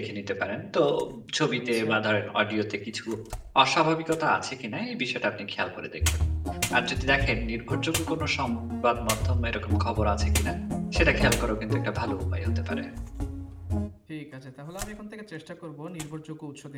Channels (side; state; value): both; identical; correlation 1.00